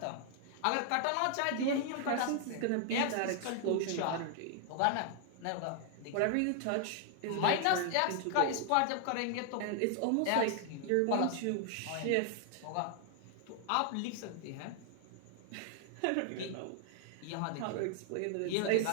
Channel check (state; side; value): different; both; correlation 0.00